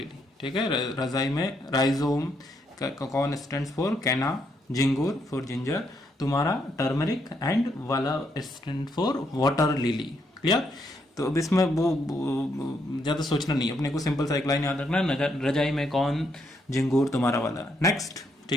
ठीक है, रजाई में राइजोम, कॉर्न स्टैंड्स फॉर कैना, झिंगूर फॉर जिंजर, तुम्हारा टर्मरिक, एंड वाला stand for water lily. Clear? तो अब इसमें वो ज्यादा सोचना नहीं, अपने को सिंपल सा एक लाइन याद रखना, रजाई में कौन, झिंगूर, तुम्हारा वाला। नेक्स्ट।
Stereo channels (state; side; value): normal; both; correlation 0.76